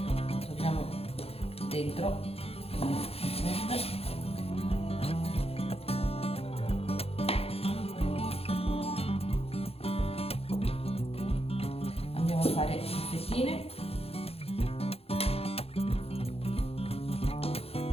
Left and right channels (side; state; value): right; late; 0.29 ms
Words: Dentro andiamo a fare le fettine.